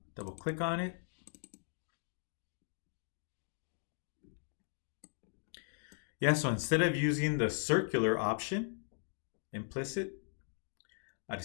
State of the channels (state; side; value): silent; right; digital silence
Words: double click on it. Yeah, so instead of using the circular option, implicit, I